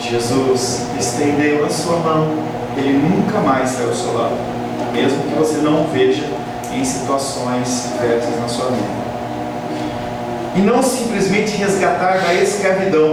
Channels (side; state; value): both; identical; correlation 1.00